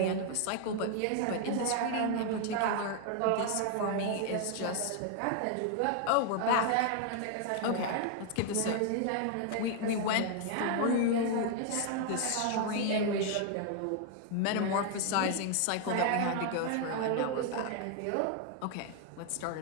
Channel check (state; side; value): different; both; correlation 0.00